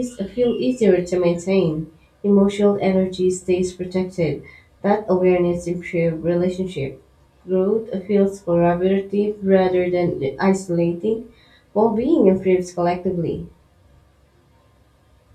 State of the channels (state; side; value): identical; both; correlation 1.00